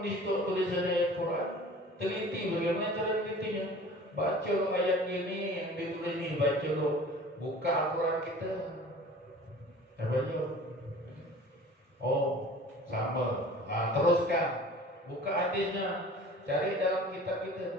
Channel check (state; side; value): normal; both; correlation 0.44